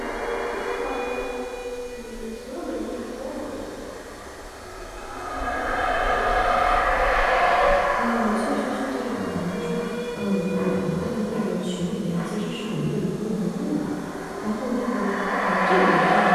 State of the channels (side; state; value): both; identical; correlation 1.00